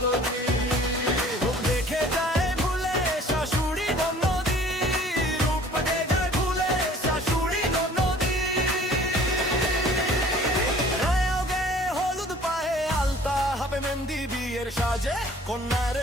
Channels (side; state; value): both; normal; correlation 0.51